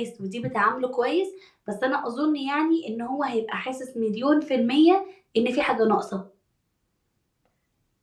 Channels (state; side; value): identical; both; correlation 1.00